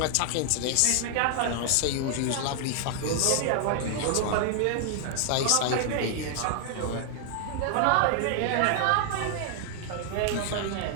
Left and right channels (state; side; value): different; both; correlation 0.00